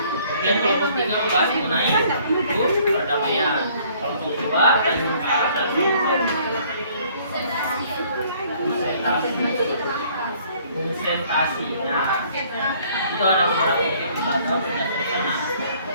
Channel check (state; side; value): inverted; both; correlation -0.59